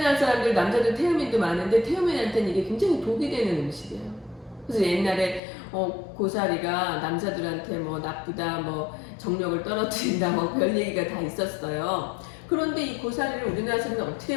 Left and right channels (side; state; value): right; drops out; at 5.4 s